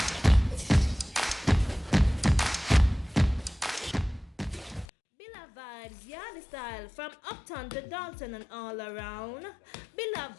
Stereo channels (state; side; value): drops out; right; at 4.9 s